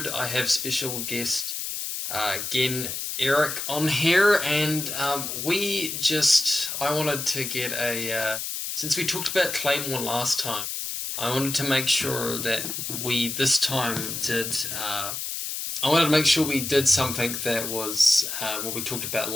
I have special guest, again, Eric on here, and I wanted to get since we talked about Claymore last time, I wanted to make sure that we this time did, I wanted to make sure we did something that was what we talked about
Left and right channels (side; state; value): left; noise; hiss, 4 dB below the sound